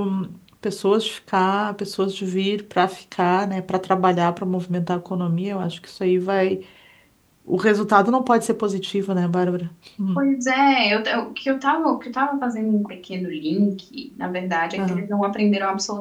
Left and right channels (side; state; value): both; identical; correlation 1.00